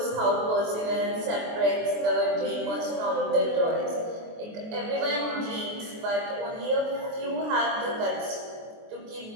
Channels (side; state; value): left; late; 23 ms